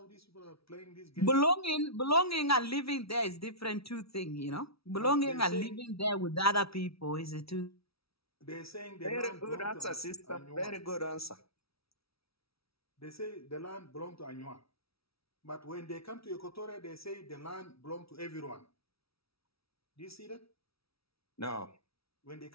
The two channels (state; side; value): late; right; 0.76 ms